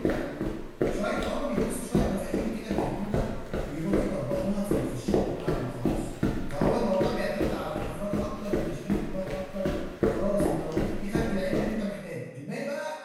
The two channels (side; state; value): both; identical; correlation 1.00